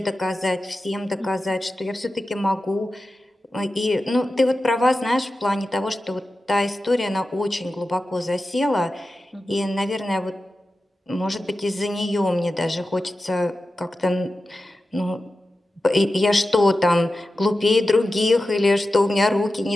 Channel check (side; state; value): both; normal; correlation 0.93